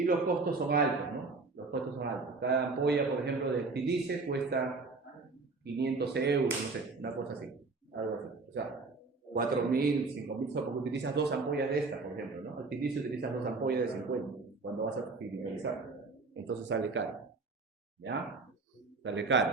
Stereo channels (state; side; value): quieter; left; 3.9 dB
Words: los costos son altos, ¿no? Los costos son altos. Cada ampolla, por ejemplo, de Stilice cuesta 500 euros, no sé, una cosa así. Algo así. O sea, 4.000, 5.000, porque utilizas 2 ampollas de estas, por ejemplo, ¿no? El Stilice utilizas 2 ampollas de 50 cuando vas a criminalizar. Entonces sale caro. ¿Ya? Sale